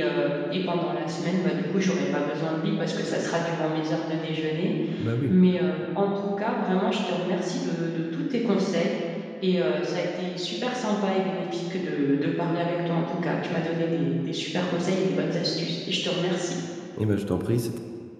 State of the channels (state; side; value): identical; both; correlation 1.00